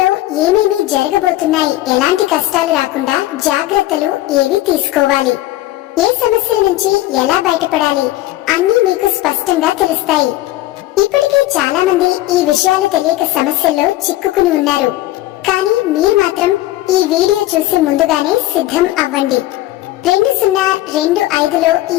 ఏమేమి జరగబోతున్నాయి, ఎలాంటి కష్టాలు రాకుండా జాగ్రత్తలు ఏవి తీసుకోవాలి, ఏ సమస్యల నుంచి ఎలా బయటపడాలి అన్నీ మీకు స్పష్టంగా తెలుస్తాయి. ఇప్పటికే చాలా మంది ఈ విషయాలు తెలియక సమస్యల్లో చిక్కుకుని ఉన్నారు. కానీ మీరు మాత్రం ఈ వీడియో చూసి ముందుగానే సిద్ధం అవ్వండి. 2025లో ఈ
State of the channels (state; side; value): quieter; right; 16.1 dB